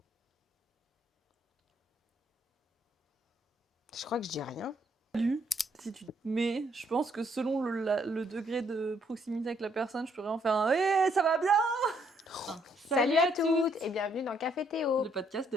Je crois que je dis rien. Salut. Si tu... Mais je pense que selon le degré de proximité avec la personne, je pourrais en faire un hey, ça va bien. Salut à toutes et bienvenue dans Café Théo. Le podcast de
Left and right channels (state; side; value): normal; both; correlation 0.70